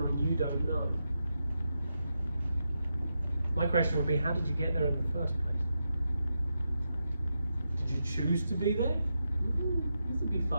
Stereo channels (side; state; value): both; inverted; correlation -0.86